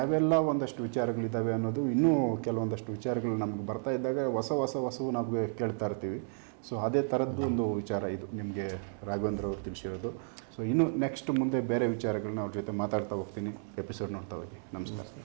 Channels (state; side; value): silent; left; 55 dB below the other